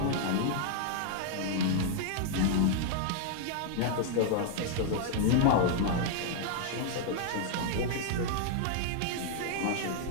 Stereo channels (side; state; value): both; different; correlation -0.01